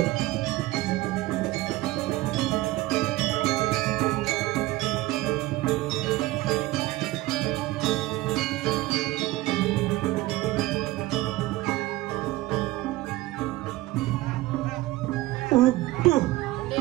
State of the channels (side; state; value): left; quieter; 18.3 dB